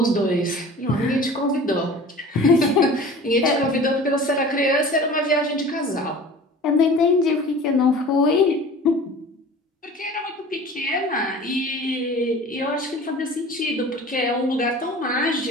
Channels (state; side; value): normal; both; correlation 0.41